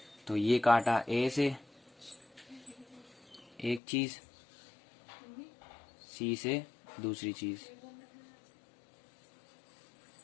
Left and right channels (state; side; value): drops out; right; at 3.8 s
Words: तो ये काटा ए से एक चीज, सी से दूसरी चीज।